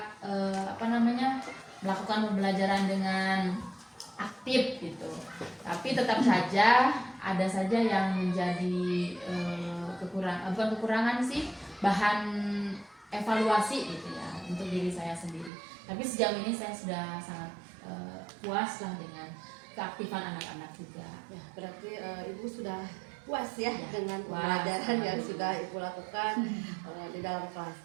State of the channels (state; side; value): drops out; left; at 15.5 s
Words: melakukan pembelajaran dengan aktif gitu. Tapi tetap saja ada saja yang menjadi kekurangan sih, bahan evaluasi gitu ya untuk diri saya sendiri. Tapi sejauh ini saya sudah sangat puas lah dengan keaktifan anak-anak juga. Ya, berarti Ibu sudah puas ya, dengan puas. pembelajaran yang sudah Ibu lakukan di dalam kelas.